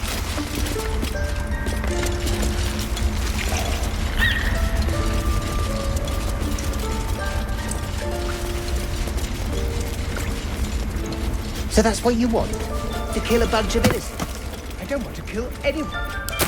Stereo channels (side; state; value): both; identical; correlation 1.00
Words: So that's what you want? To kill a bunch of innocents? I don't want to kill anyone. But